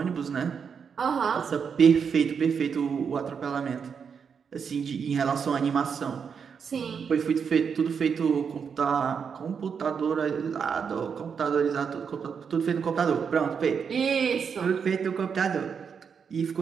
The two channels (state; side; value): quieter; left; 6.5 dB